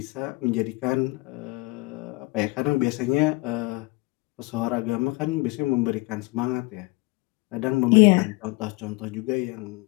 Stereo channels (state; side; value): quieter; right; 24.1 dB